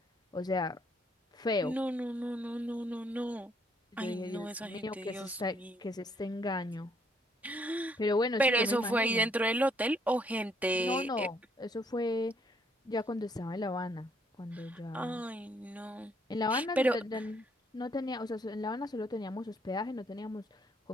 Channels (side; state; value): both; normal; correlation 0.68